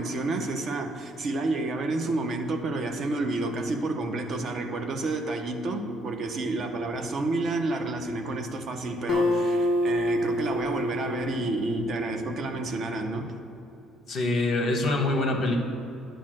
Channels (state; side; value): normal; both; correlation 0.67